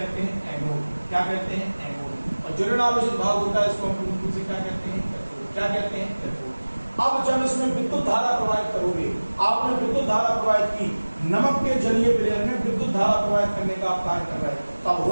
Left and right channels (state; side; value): inverted; both; correlation -1.00